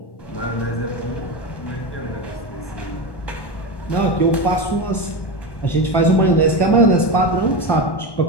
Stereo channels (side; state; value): right; late; 1.1 ms